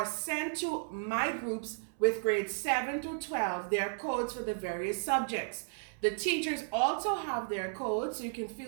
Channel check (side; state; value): left; silent; 55 dB below the other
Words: sent to my groups with grades 7 through 12 their codes for the various subjects. The teachers also have their codes, so you can